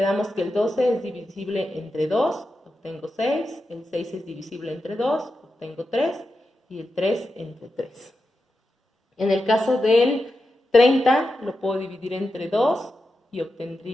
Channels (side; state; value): both; normal; correlation 0.89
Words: que el 12 es divisible entre 2, obtengo 6. El 6 es divisible entre 2, obtengo 3. Y el 3 entre 3. En el caso del 30 lo puedo dividir entre 2 y